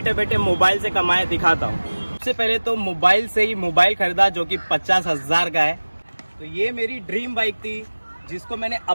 बैठे मोबाइल से कमाए दिखाता हूँ। सबसे पहले तो मोबाइल से ही मोबाइल खरीदा जो कि 50,000 का है। तो ये मेरी ड्रीम बाइक थी जिसको मैंने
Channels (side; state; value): both; inverted; correlation -1.00